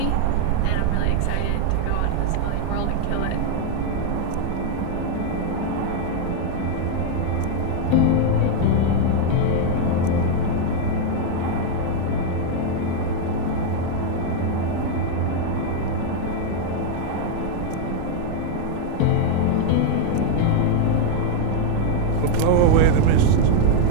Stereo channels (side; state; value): both; different; correlation 0.00